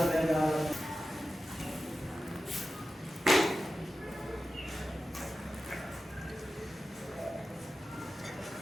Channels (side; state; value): both; normal; correlation 0.93